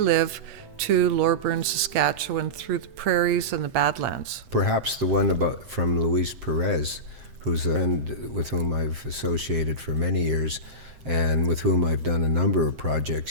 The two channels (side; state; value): left; late; 7.6 ms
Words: to Loreburn, Saskatchewan, through the prairies and the Badlands. Perhaps the one from Luis Perez, who's a friend with whom I've associated for many years, and with whom I've done a number of projects.